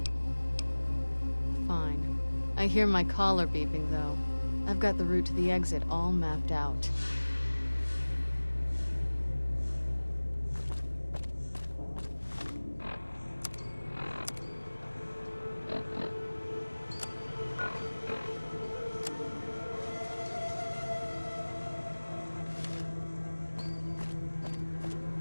Fine. I hear my collar beeping, though. I've got the route to the exit all mapped out.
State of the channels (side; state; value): both; inverted; correlation -1.00